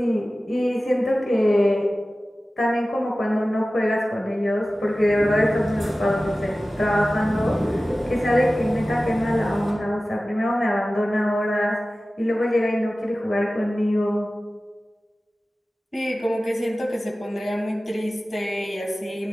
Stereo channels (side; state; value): both; normal; correlation 0.96